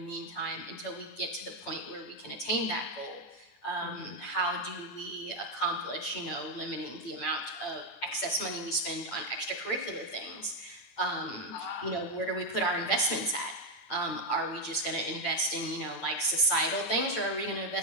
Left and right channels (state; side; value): late; right; 8.8 ms